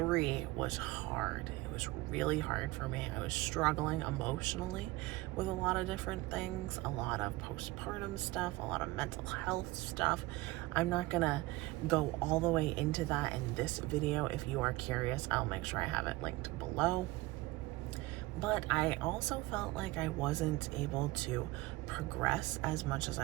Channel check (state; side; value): quieter; left; 19.8 dB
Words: was hard. It was really hard for me. I was struggling emotionally with a lot of different things, a lot of postpartum stuff, a lot of mental health stuff. I'm not gonna go all the way into that in this video. If you are curious, I'll make sure I have it linked below. But I also felt like I wasn't able to progress as much as